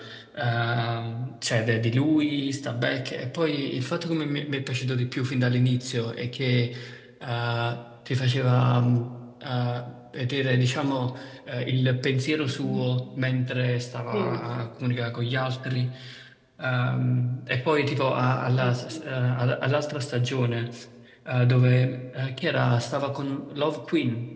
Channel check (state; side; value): identical; both; correlation 1.00